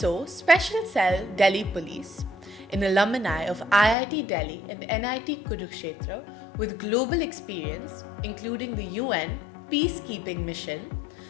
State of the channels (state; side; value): drops out; right; at 4.0 s